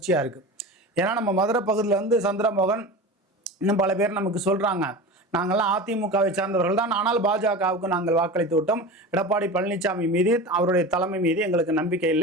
இருக்குது. ஏன்னா நம்ம மதுரை பகுதியில் சந்திரமோகன் இன்னும் பல பேர் நமக்கு சொல்கிறாங்க, நாங்கள்லாம் அதிமுகவை சார்ந்தவர்கள் தான், ஆனால் பாஜகவுக்கு நாங்கள் வாக்களித்து விட்டோம். எடப்பாடி பழனிசாமி மீது, அவருடைய தலைமை மீது எங்களுக்கு நம்பிக்கை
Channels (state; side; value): normal; both; correlation 0.30